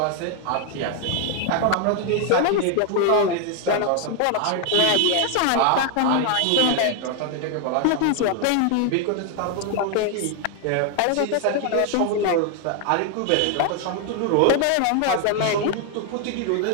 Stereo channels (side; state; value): both; different; correlation 0.00